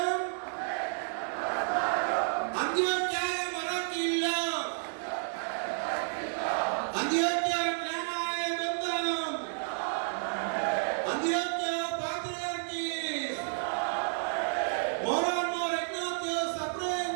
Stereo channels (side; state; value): left; silent; digital silence